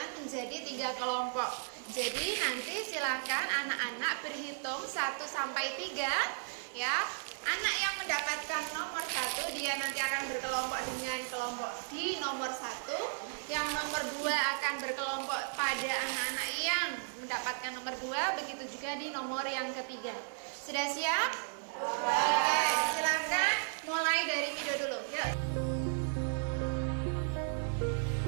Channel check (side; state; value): left; silent; digital silence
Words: menjadi 3 kelompok. Jadi nanti silakan anak-anak berhitung 1 sampai 3 ya. Anak yang mendapatkan nomor 1 dia nanti akan berkelompok dengan kelompok di nomor 1. Yang nomor 2 akan berkelompok pada anak-anak yang mendapatkan nomor 2. Begitu juga di nomor yang ketiga. Sudah siap? Oke, silakan mulai dari Mido dulu. Yuk.